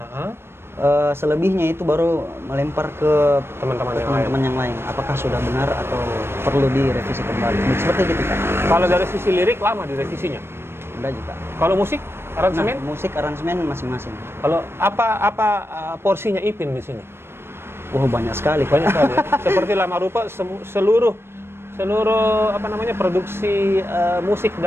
Heeh. Selebihnya itu baru melempar ke Teman-teman yang lain. teman-teman yang lain. Apakah sudah benar atau perlu direvisi kembali? Seperti gitu Kak. Kalau dari sisi lirik lama direvisinya. Udah juga. Kalau musik, aransemen? Nah, musik aransemen masing-masing. Kalau apa porsinya Ipin di sini? Banyak sekali Kak. Banyak sekali. Ya? Seperti lama rupa seluruh produksi musik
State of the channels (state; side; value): late; left; 0.12 ms